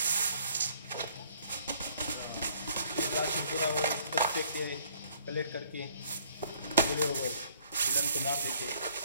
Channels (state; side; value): inverted; both; correlation -0.60